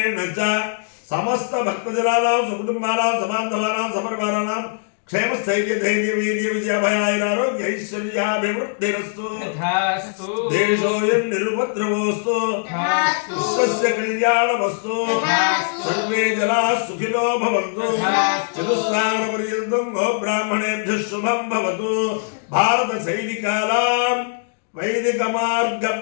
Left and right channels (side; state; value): right; silent; digital silence